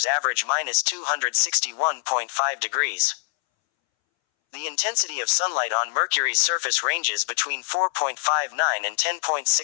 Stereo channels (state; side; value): silent; right; 62 dB below the other